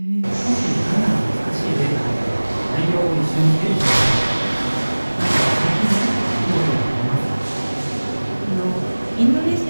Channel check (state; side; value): inverted; both; correlation -1.00